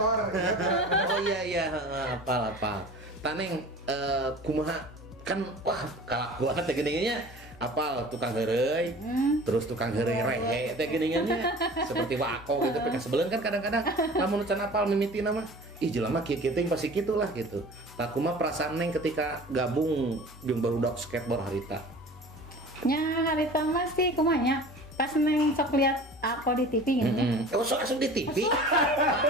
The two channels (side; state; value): both; normal; correlation 0.41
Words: Oh iya apal. Taneng kumaha kan wah kalakuan teh geuningannya apal tukang heureuy. Terus tukang heureuy rehe teh geuningannya seperti wako gitu peka sebeleun kan kadang-kadang lamun can apal mimitina mah ih jelema kieu teh pasti kitulah gitu. Tah kumaha perasaan Neng ketika gabung jeung barudak skateboard harita? Nya harita mah sih kumaha nya pas Neng sok lihat aku di TV gitu. Oh, sok asup di TV.